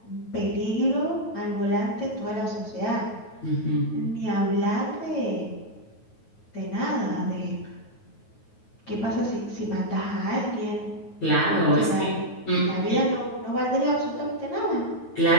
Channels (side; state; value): right; late; 9.3 ms